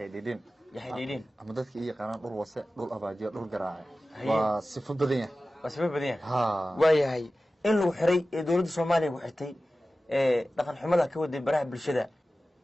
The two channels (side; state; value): both; normal; correlation 0.95